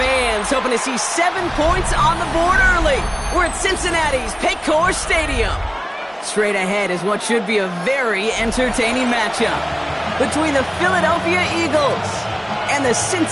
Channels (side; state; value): both; identical; correlation 1.00